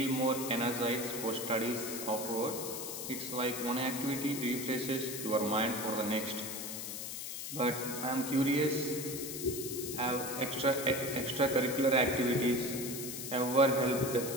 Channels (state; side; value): noise; left; hiss, 6 dB below the sound